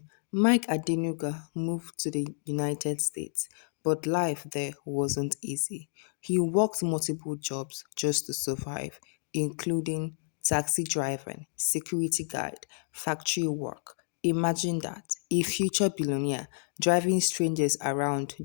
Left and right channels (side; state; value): right; silent; digital silence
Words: Mike Adenuga moved to the United States, but life there wasn't easy. He worked multiple jobs just to survive, including taxi driving, security guard, factory work. Imagine that, a future billionaire driving strangers around